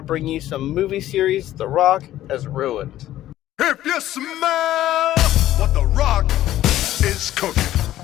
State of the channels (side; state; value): right; quieter; 13.6 dB